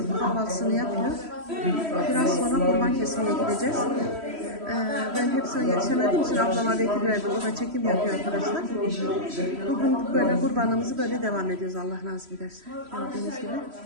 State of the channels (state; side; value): late; left; 3.1 ms